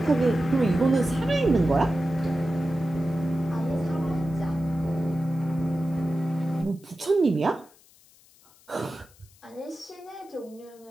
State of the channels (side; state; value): left; noise; hiss, 28 dB below the sound